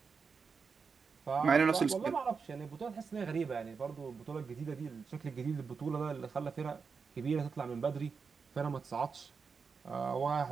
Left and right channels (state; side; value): quieter; left; 5.4 dB